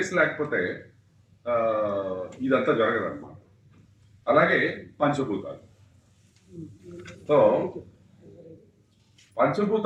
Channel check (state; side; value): identical; both; correlation 1.00